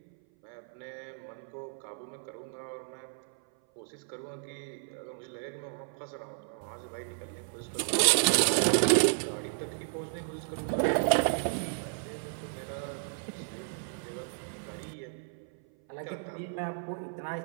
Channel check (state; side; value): silent; left; 56 dB below the other